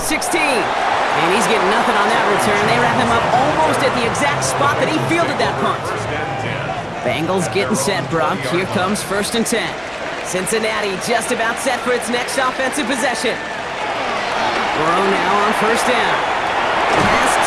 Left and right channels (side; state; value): both; identical; correlation 1.00